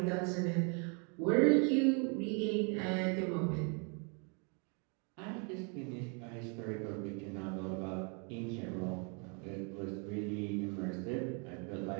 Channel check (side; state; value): left; quieter; 35.9 dB